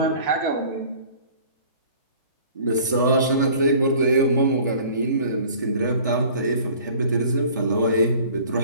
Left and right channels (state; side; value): inverted; both; correlation -0.49